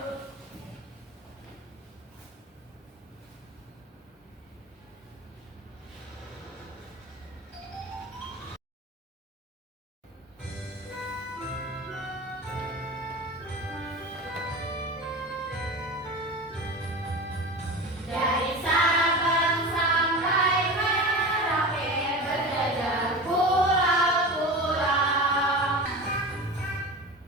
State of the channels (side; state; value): both; normal; correlation 0.30